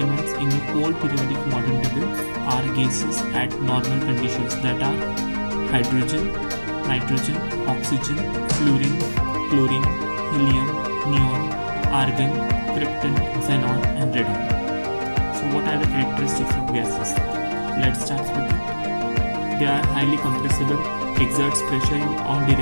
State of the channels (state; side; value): inverted; both; correlation -1.00